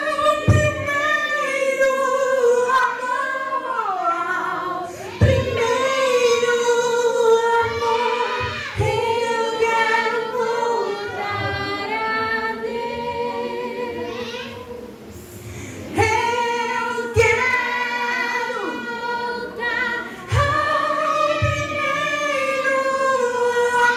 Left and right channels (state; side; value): identical; both; correlation 1.00